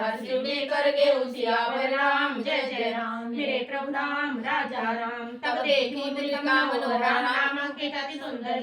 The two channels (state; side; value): identical; both; correlation 1.00